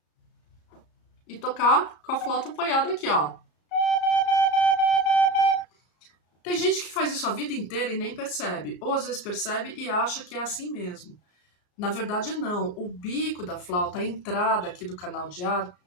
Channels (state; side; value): late; right; 34 ms